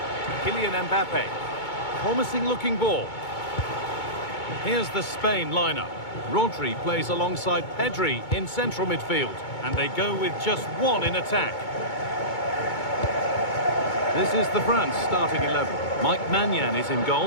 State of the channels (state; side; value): late; right; 2.2 ms